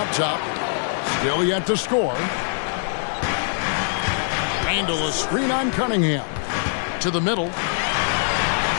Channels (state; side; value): silent; right; 57 dB below the other